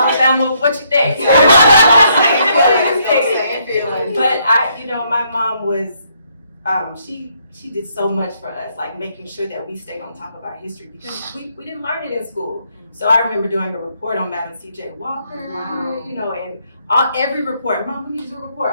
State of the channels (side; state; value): both; inverted; correlation -0.72